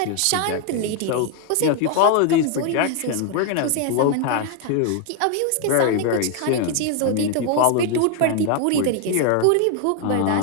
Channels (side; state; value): both; different; correlation 0.00